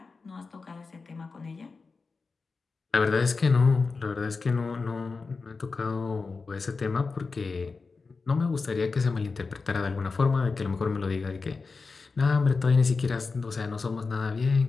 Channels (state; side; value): quieter; right; 4.3 dB